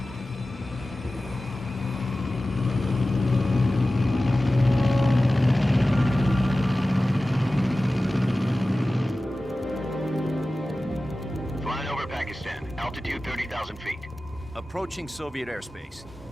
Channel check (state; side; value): normal; both; correlation 0.96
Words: Altitude 30,000 feet. Approaching Soviet airspace.